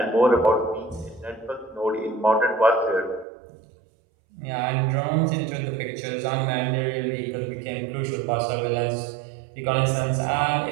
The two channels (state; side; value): drops out; left; at 3.2 s